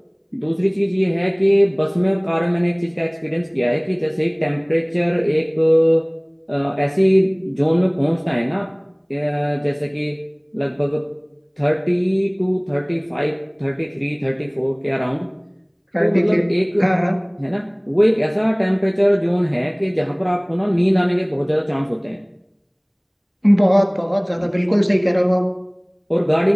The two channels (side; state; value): both; identical; correlation 1.00